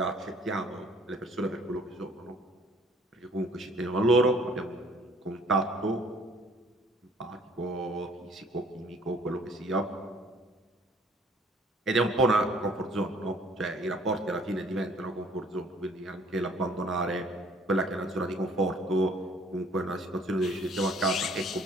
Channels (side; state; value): both; normal; correlation 0.57